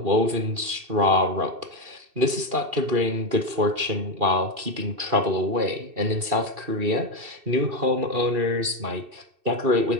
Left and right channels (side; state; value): left; late; 2.7 ms